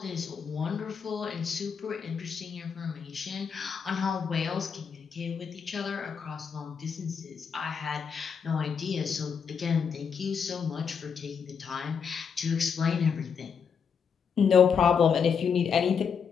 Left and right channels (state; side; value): quieter; right; 6.6 dB